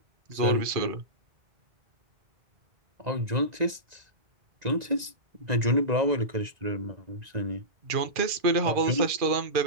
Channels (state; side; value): late; left; 1.9 ms